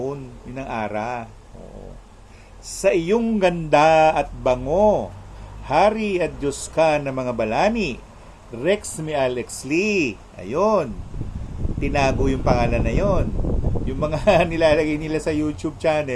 yun ang ara. Oo. Sa iyong ganda at bango, Hari at Diyos ka ng mga balani, Rex mi Alex Lee. Ayun. Tinago yung pangalan na yon. Yung mga nilalagay nila sa YouTube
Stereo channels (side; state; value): both; identical; correlation 1.00